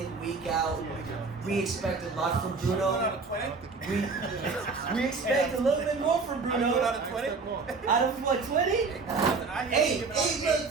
week out. We expect a lot from Bruno. Out of 20? We expect a little bit more from Bruno. Out of 20? Out of what, 20? 8. I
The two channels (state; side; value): quieter; left; 4.4 dB